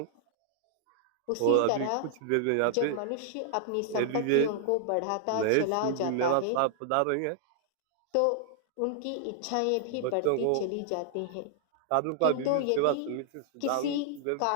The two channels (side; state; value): both; different; correlation -0.01